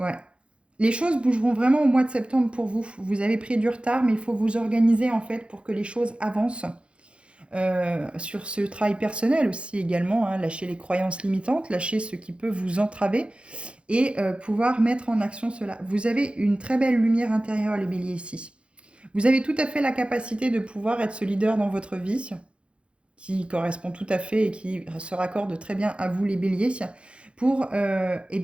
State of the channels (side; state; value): left; late; 0.058 ms